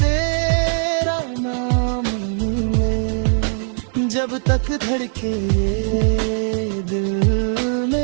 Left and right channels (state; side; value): silent; left; 60 dB below the other